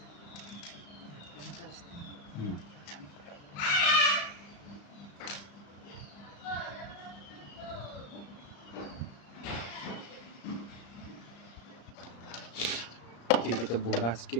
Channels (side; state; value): right; late; 35 ms